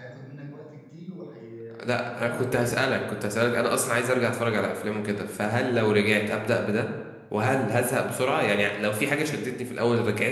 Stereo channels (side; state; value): both; identical; correlation 1.00